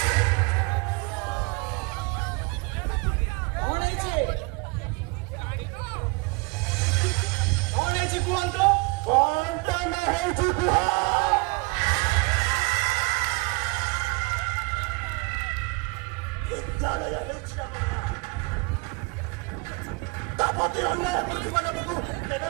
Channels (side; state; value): left; quieter; 28.5 dB